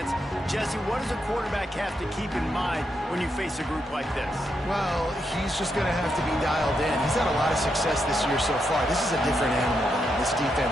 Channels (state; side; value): normal; both; correlation 0.82